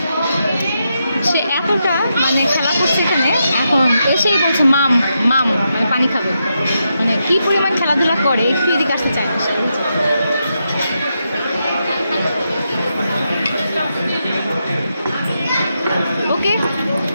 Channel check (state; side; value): inverted; both; correlation -0.84